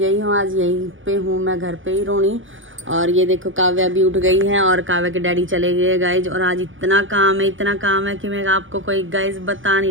हूँ, आज यहीं पे हूँ, मैं घर पे ही रोनी। और ये देखो काव्या भी उठ गई है और काव्या के डैडी चले गए गाइज। और आज इतना काम है कि मैं आपको कोई गाइज बता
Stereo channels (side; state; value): left; late; 0.57 ms